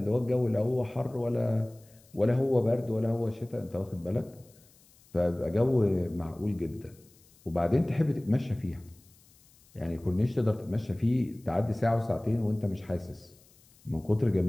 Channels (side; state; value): left; noise; hiss, 29 dB below the sound